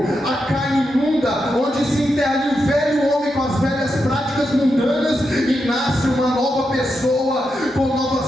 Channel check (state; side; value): normal; both; correlation 0.85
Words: a carne imunda, onde se enterra ali o velho homem com as velhas práticas mundanas e nasce uma nova pessoa com